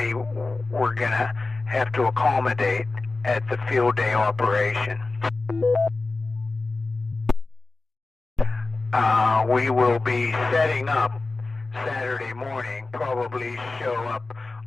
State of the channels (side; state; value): right; quieter; 3.4 dB